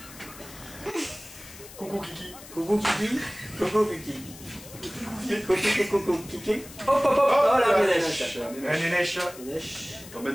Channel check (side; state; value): left; noise; hiss, 17 dB below the sound